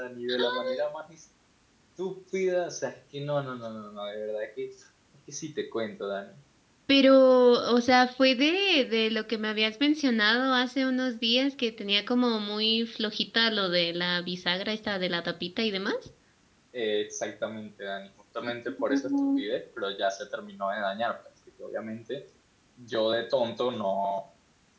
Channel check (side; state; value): both; identical; correlation 1.00